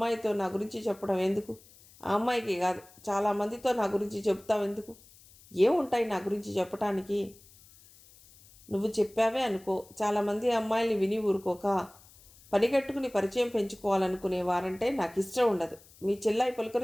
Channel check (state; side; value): noise; left; hiss, 25 dB below the sound